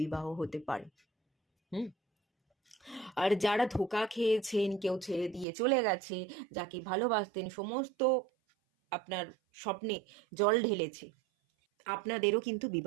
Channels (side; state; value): left; drops out; at 5.5 s